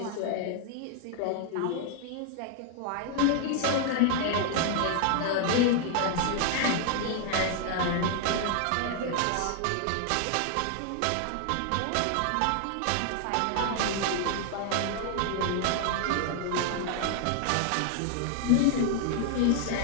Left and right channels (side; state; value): both; different; correlation 0.00